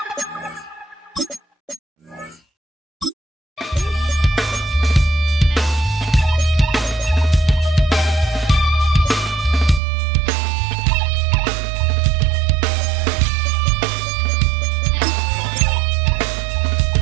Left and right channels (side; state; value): left; drops out; at 9.8 s